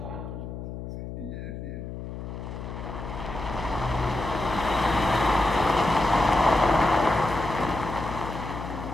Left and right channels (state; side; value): noise; left; hum, 8 dB below the sound